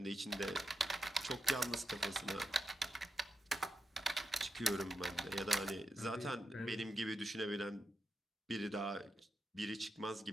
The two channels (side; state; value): both; normal; correlation 0.87